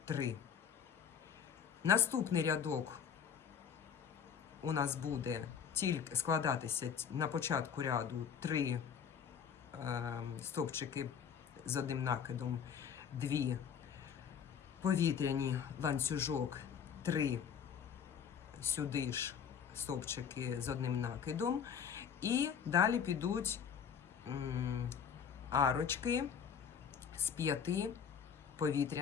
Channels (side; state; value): right; quieter; 7.5 dB